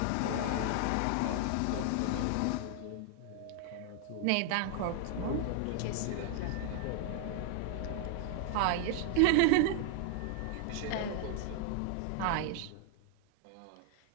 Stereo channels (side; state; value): both; different; correlation 0.00